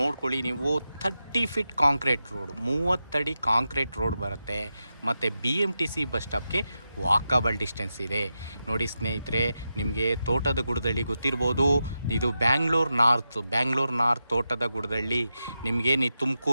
ನೀವು. 30 ಫೀಟ್ ಕಾಂಕ್ರೀಟ್ ರೋಡ್, 30 ಅಡಿ ಕಾಂಕ್ರೀಟ್ ರೋಡ್ ಬರುತ್ತೆ. ಮತ್ತು BMTC ಬಸ್ ಸ್ಟಾಪ್ಗೆ ವಾಕಬಲ್ ಡಿಸ್ಟೆನ್ಸ್ ಇದೆ. ನೋಡಿ ಸ್ನೇಹಿತರೆ, ನಿಮಗೆ ತೋಟದ ಗುಡ್ದಳ್ಳಿ ಗೊತ್ತಿರ್ಬೋದು. ಇದು ಬ್ಯಾಂಗ್ಳೂರು ನಾರ್ತ್ ತೋಟದ ಗುಡ್ದಳ್ಳಿ. ನಿಮಗೆ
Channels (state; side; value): inverted; both; correlation -0.89